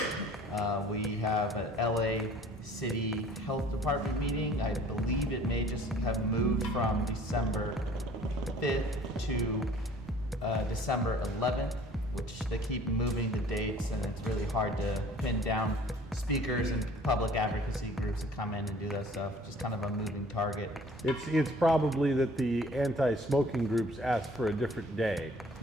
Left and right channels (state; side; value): normal; both; correlation 0.52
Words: We have an LA City Health Department meeting. I believe it may just have moved from December 5th to December 11th, which they keep moving the dates, and it's really hard to pin down speakers and public advocacy groups that come in and do that stuff. Just kind of a moving target. It's probably that the anti-smoking groups ask for a different day.